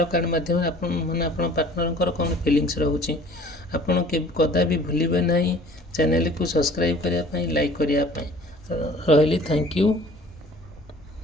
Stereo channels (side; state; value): both; normal; correlation 0.50